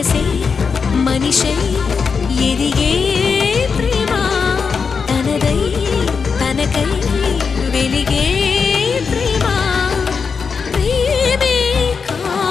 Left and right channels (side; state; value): right; quieter; 5.6 dB